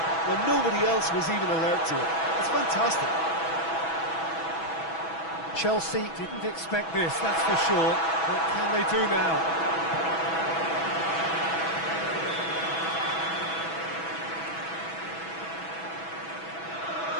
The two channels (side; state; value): right; late; 6.1 ms